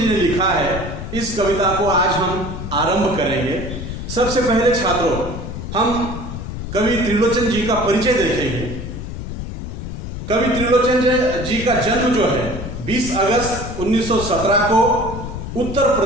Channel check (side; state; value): left; noise; rumble, 7 dB below the sound